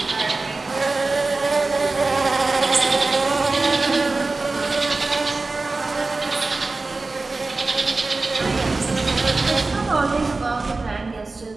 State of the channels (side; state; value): left; quieter; 3.5 dB